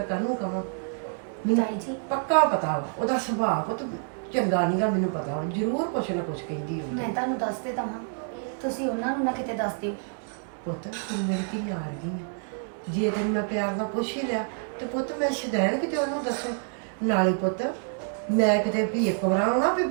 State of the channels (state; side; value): silent; left; 57 dB below the other